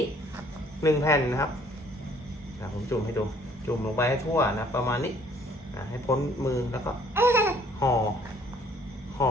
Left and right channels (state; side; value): normal; both; correlation 0.60